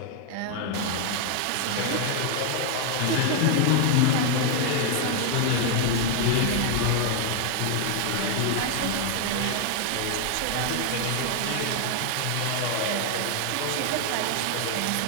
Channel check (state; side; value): different; both; correlation 0.00